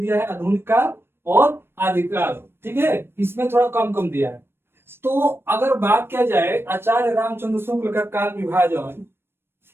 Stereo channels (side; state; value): left; late; 0.11 ms